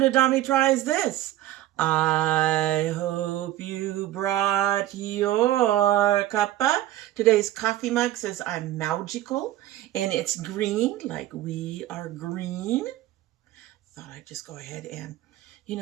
domytriesthis. I hope you brought your cuppa. Today's coffee mug says I'm magical and it's green, like we are green. Thought I'd just go ahead and, you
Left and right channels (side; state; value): left; quieter; 14.3 dB